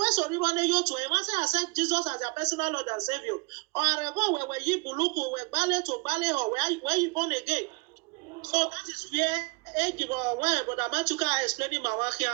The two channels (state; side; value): quieter; left; 29.9 dB